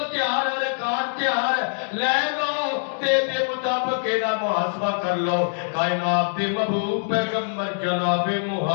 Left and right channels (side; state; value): right; silent; digital silence